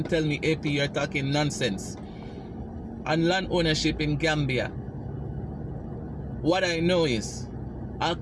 tell me, AP, you're talking nonsense. And land ownership in Gambia, what I know is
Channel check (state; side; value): identical; both; correlation 1.00